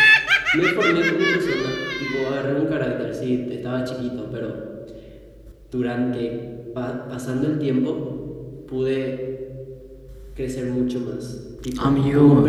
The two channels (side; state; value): both; identical; correlation 1.00